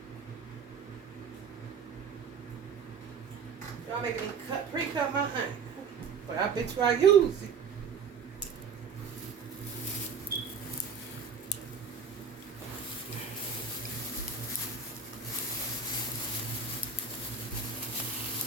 Y'all making me pre-cut my onion. But I bet you I use it.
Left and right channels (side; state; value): left; quieter; 5.5 dB